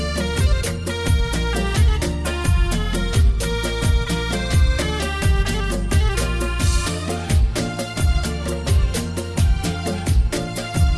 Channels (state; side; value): identical; both; correlation 1.00